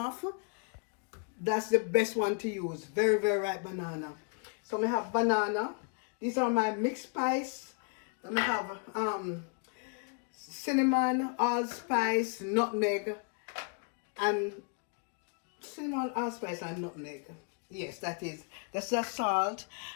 that's the best one to use. Very, very ripe banana. So I have banana. These are my mixed spice. I have cinnamon, allspice, nutmeg, and cinnamon, allspice, and nutmeg. Yes, that's the salt.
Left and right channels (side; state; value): right; quieter; 37.6 dB